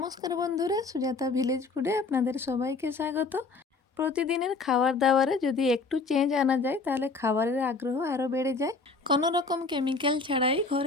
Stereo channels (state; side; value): quieter; right; 4.0 dB